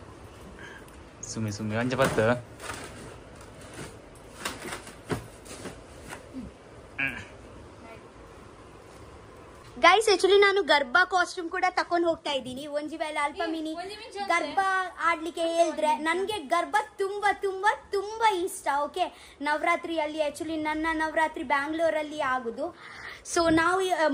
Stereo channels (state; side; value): identical; both; correlation 1.00